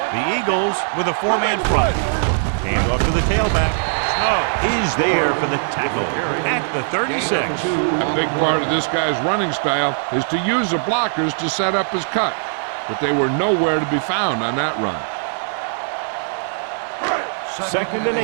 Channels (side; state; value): left; silent; digital silence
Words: The Eagles with a 4-man front. Hand off to the tailback. Snow is there for the tackle at the 36. A big part of this guy's running style is to use the blockers to set up his cut, but they were nowhere to be found on that run. 2nd and